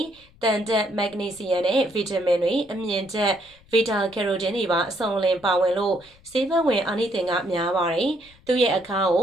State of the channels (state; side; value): noise; left; rumble, 28 dB below the sound